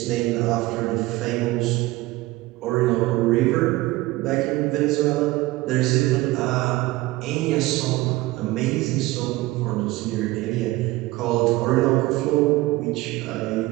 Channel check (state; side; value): quieter; left; 19.3 dB